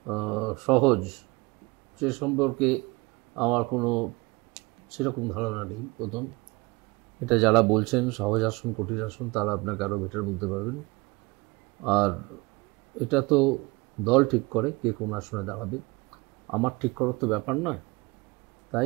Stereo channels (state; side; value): quieter; left; 24.3 dB